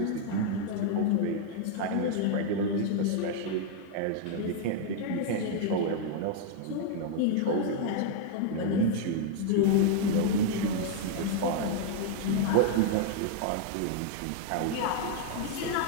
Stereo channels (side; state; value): both; different; correlation 0.00